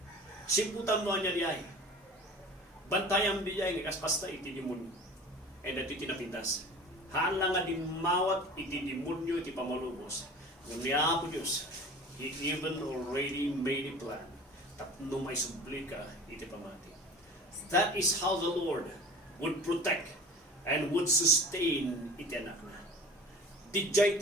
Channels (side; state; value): both; normal; correlation 0.40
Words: Simputan mo niya diay. Bantayam diay nga kaspasta iti demonyo. E dati tinapintas. Haan lang nga dimawat iti demonyo iti pamalubos. Ngam niya po Diyos, He even already made a plan. Tapno may sublika iti pamati. That is how the Lord would protect and would sustain iti anak na. Dijay